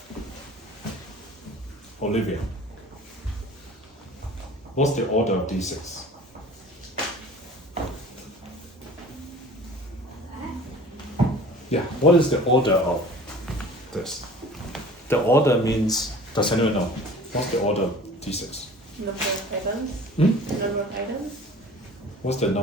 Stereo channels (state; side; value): normal; both; correlation 0.45